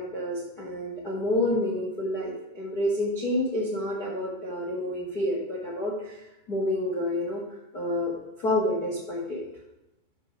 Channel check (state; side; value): late; right; 2.3 ms